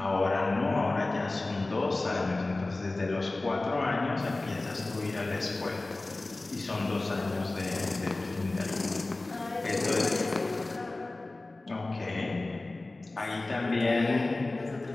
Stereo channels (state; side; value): quieter; right; 3.0 dB